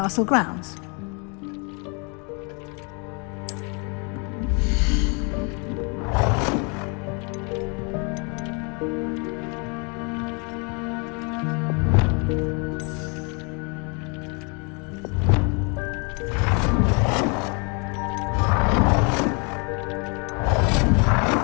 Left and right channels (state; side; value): quieter; right; 33.6 dB